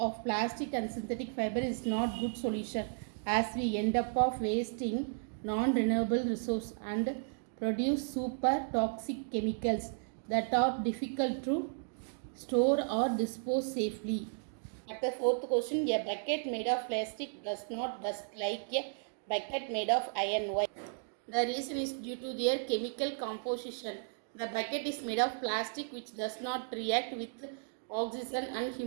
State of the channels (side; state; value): left; silent; digital silence